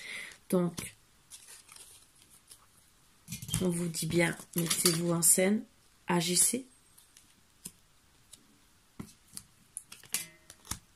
Donc, on vous dit bien, mettez-vous en scène, agissez.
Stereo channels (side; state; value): both; identical; correlation 1.00